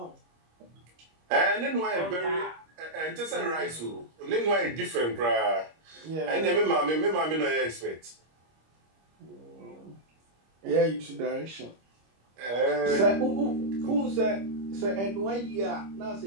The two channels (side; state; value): left; late; 25 ms